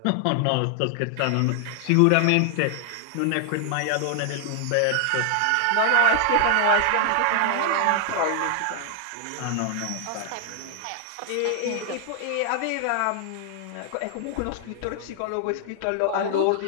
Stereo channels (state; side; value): different; both; correlation 0.00